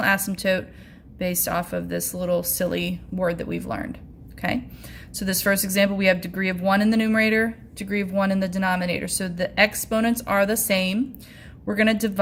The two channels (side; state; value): both; identical; correlation 1.00